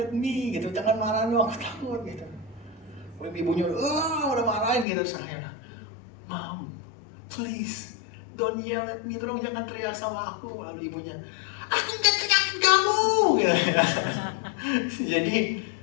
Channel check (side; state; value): right; drops out; at 4.9 s